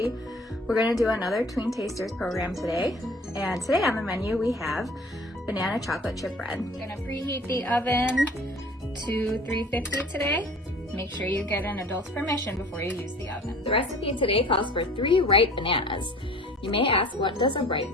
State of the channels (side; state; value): both; normal; correlation 0.47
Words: We're going to do another Tween Tasters program today. And today on the menu we have banana chocolate chip bread. We're going to preheat the oven to 350 today. Make sure you get an adult's permission before you use the oven. The recipe today calls for 3 ripe bananas. You may ask, what does a ripe